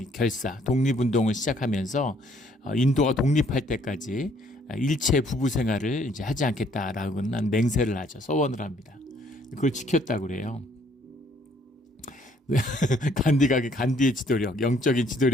독립운동을 시작하면서 인도가 독립할 때까지 일체 부부 생활을 이제 하지 않겠다라고는 맹세를 하죠. 서원을 합니다. 그걸 지켰다고 그래요. 간디의 지도력, 영적인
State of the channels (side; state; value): both; normal; correlation 0.64